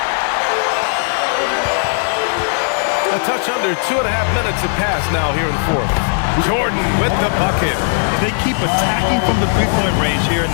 A touch under 2.5 minutes have passed now here in the 4th. Jordan with the bucket. They keep attacking from the three-point range here in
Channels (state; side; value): silent; right; 56 dB below the other